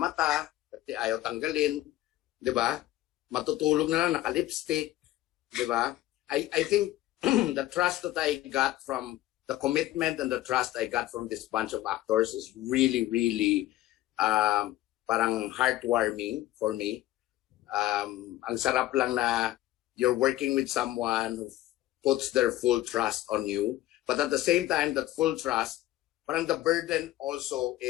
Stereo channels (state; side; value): quieter; right; 15.4 dB